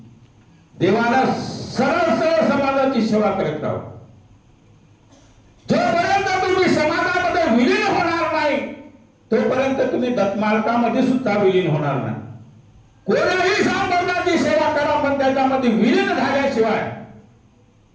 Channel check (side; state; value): both; identical; correlation 1.00